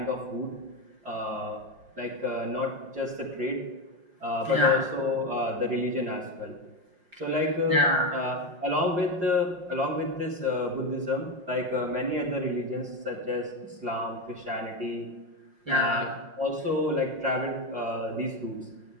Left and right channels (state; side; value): late; left; 5.5 ms